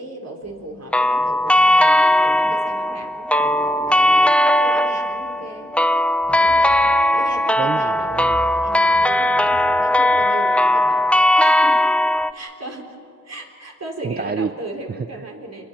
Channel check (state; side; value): normal; both; correlation 0.84